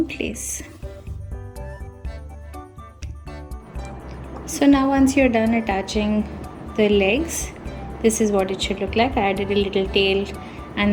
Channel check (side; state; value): both; identical; correlation 1.00